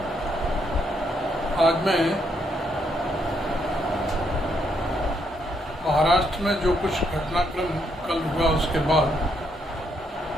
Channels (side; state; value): both; normal; correlation 0.75